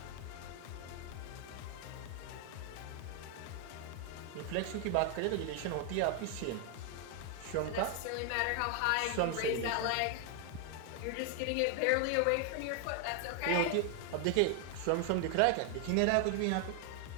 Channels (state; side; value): different; both; correlation 0.00